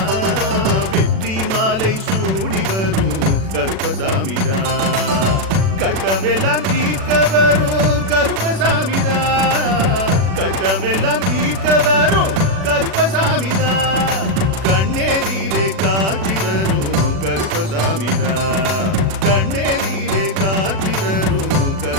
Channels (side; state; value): left; late; 36 ms